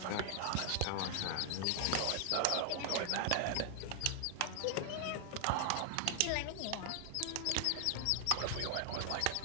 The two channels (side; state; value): both; different; correlation 0.00